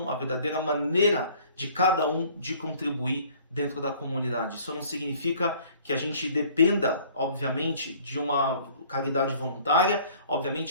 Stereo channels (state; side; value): inverted; both; correlation -0.54